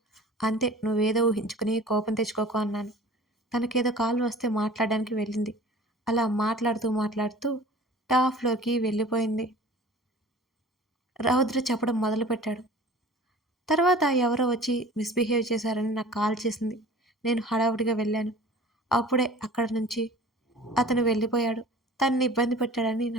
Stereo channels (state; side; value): normal; both; correlation 0.44